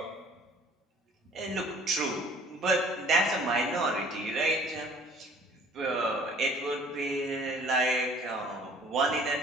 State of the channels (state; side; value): normal; both; correlation 0.53